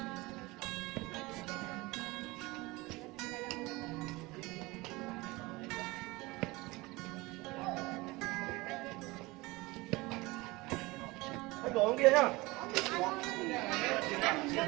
Đồ kia nhá.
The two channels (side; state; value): left; quieter; 22.2 dB